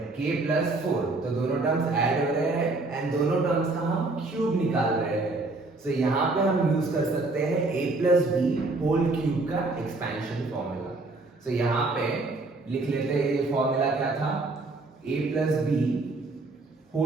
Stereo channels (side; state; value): left; quieter; 3.3 dB